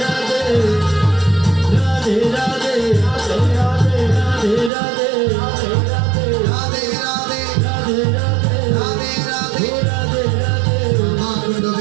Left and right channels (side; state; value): left; drops out; at 4.7 s